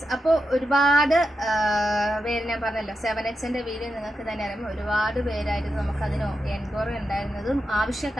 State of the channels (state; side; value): normal; both; correlation 0.87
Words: അപ്പോൾ ഒരുപാട് പേര് ഞാൻ പറഞ്ഞല്ലോ 7Xന്റെ വീഡിയോ നിങ്ങൾക്ക് തന്നെ അറിയാം. ഒരുപാട് പേരായിരുന്നു നമുക്കതിന് എൻക്വയറി ഉണ്ടായിരുന്നതും